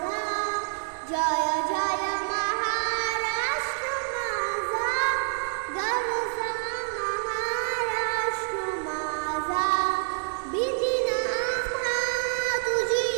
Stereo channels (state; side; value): silent; left; digital silence